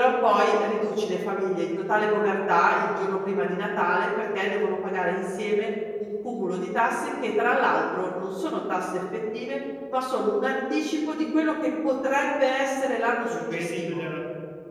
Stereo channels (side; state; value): both; identical; correlation 1.00